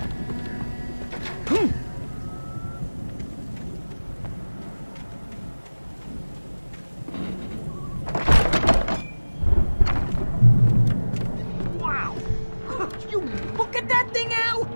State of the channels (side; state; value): both; inverted; correlation -1.00